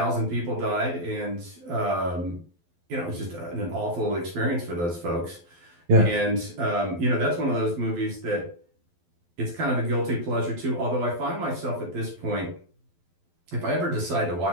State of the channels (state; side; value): late; left; 12 ms